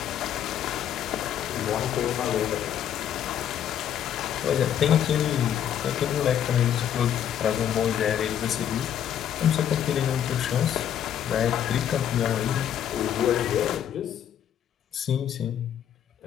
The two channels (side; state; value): right; quieter; 9.8 dB